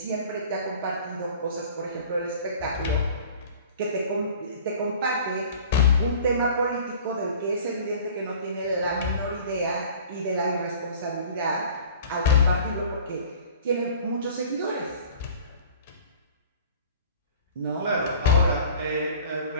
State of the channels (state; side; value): inverted; both; correlation -0.45